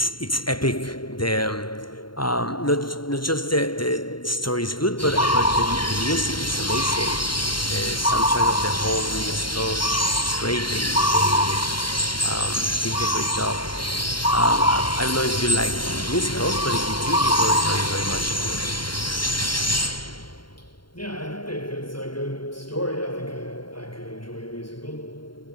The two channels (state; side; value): late; right; 0.72 ms